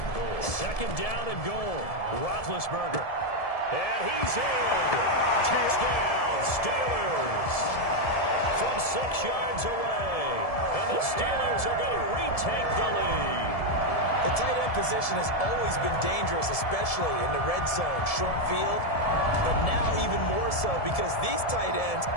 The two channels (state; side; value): late; right; 1.7 ms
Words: 2nd down and goal. Roethlisberger. And he's in. Touchdown, Steelers. From 6 yards away. And the Steelers are going to retake the lead. The tight end position has always been dangerous, especially in the red zone, short field. But now even more so because these tight ends